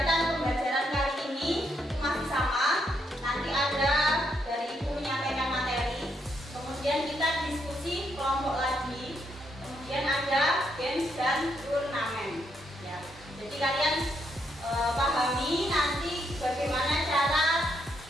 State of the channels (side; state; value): both; normal; correlation 0.77